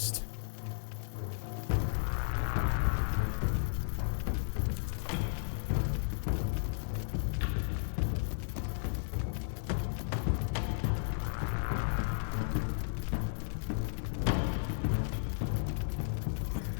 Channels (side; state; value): right; silent; 55 dB below the other